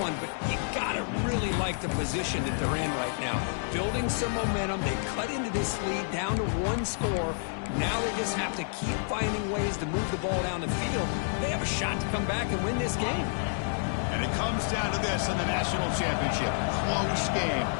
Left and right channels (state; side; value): silent; right; digital silence